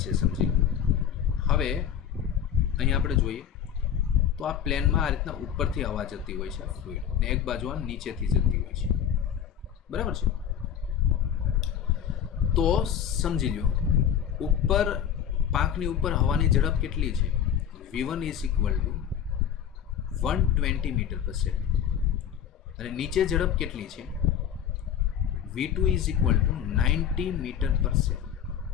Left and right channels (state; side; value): quieter; right; 9.0 dB